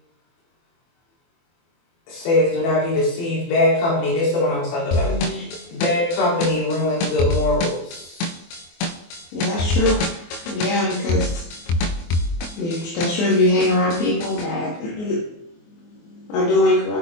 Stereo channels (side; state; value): right; late; 24 ms